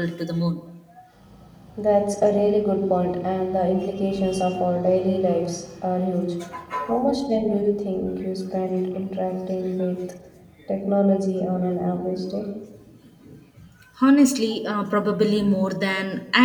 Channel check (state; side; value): identical; both; correlation 1.00